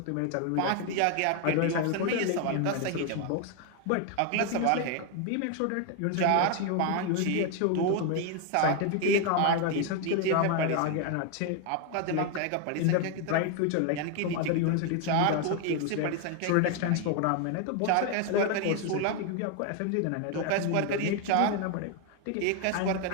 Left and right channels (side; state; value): both; different; correlation 0.01